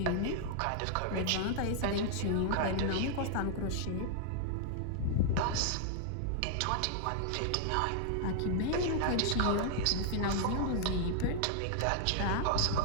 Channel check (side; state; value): both; different; correlation -0.01